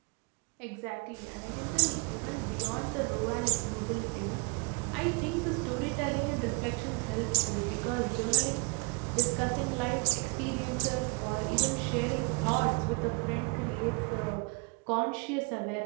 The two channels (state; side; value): quieter; left; 32.0 dB